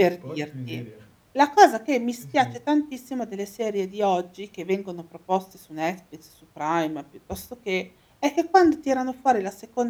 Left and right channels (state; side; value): identical; both; correlation 1.00